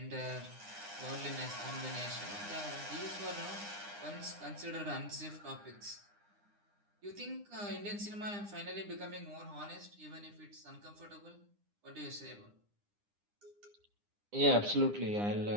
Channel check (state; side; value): late; left; 9.8 ms